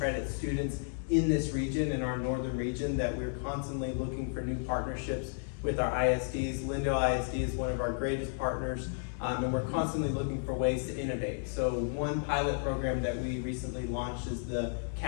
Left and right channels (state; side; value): silent; right; digital silence